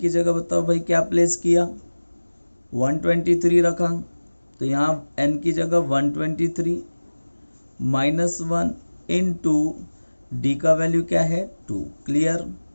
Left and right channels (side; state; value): both; inverted; correlation -1.00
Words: की जगह बताओ भाई क्या प्लेस किया 123 रखा, तो यहाँ n की जगह 123 माइनस 1 इंटू डी का वैल्यू क्या है 2, क्लियर।